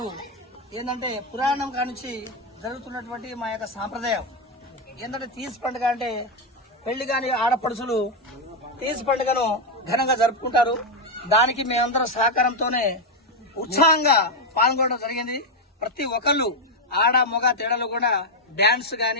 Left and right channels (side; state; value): both; normal; correlation 0.04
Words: ఏంటంటే పురాణం కానుంచి జరుగుతున్నటువంటి మా యొక్క సాంప్రదాయం ఏంటంటే తీజ్ పండుగ అంటే పెళ్లి కాని ఆడపడుచులు తీజ్ పండుగను ఘనంగా జరుపుకుంటారు. దానికి మేమందరం సహకారంతోనే ఉత్సాహంగా పాల్గొనడం జరిగింది. ప్రతి ఒక్కళ్ళు ఆడ మొగ తేడాలు కూడా డాన్స్